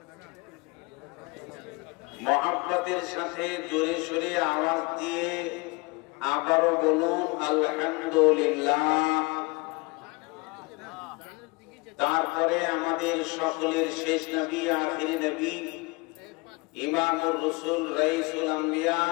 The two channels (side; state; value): right; quieter; 26.9 dB